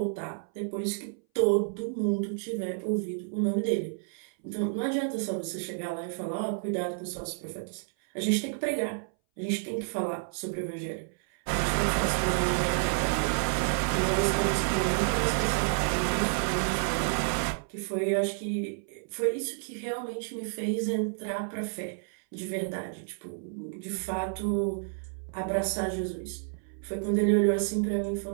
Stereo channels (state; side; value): silent; left; 58 dB below the other